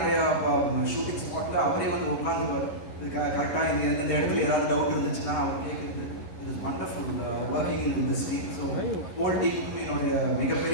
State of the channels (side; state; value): right; late; 11 ms